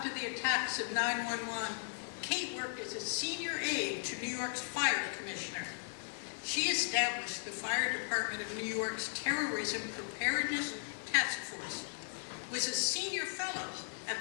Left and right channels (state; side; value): silent; right; digital silence